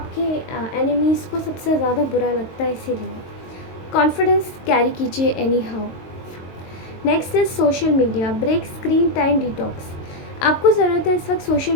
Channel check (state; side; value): late; right; 22 ms